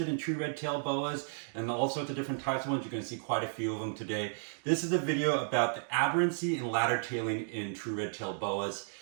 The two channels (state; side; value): silent; left; digital silence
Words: in true red-tailed boas and all sorts of different types of ones, you're going to see quite a few of them today. This is a video about the aberrancy and ladder tailing in true red-tailed boas.